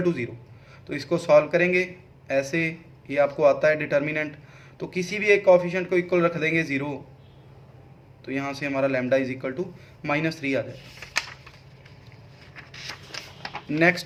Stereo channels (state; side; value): identical; both; correlation 1.00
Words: to 0। तो इसको सॉल्व करेंगे ऐसे, ये आपको आता है डिटर्मिनेंट। तो किसी भी एक कॉफिशिएंट को इक्वल रख देंगे 0, तो यहाँ से हमारा लैम्डा इज इक्वल टू -3 आ जाएगा।